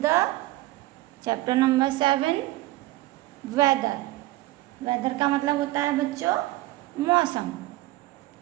chapter number 7, weather. weather का मतलब होता है बच्चों मौसम.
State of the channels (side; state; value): left; quieter; 17.8 dB